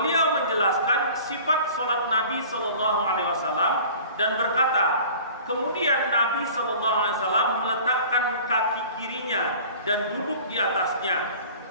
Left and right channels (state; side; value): inverted; both; correlation -0.44